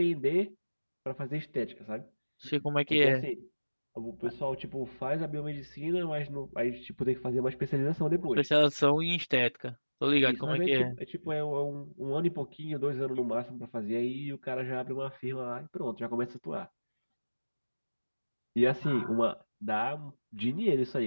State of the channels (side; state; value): both; inverted; correlation -1.00